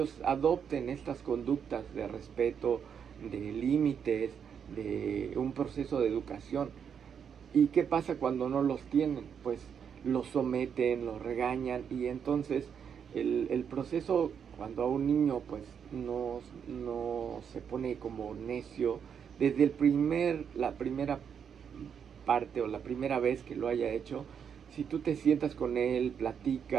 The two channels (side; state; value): left; quieter; 7.5 dB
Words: adopten estas conductas de respeto, de límites, de un proceso de educación. ¿Y qué pasa cuando no los tienen? Pues los someten, los regañan, y entonces el proceso, cuando a un niño pues no se pone como necio desde la primera parte o la primera vez que lo haya hecho, si tú te sientas con él,